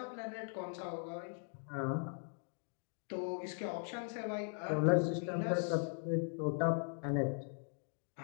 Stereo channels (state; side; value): silent; right; 51 dB below the other